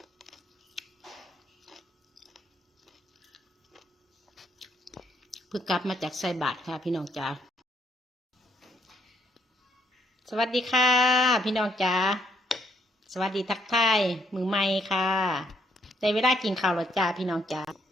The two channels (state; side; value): normal; both; correlation 0.72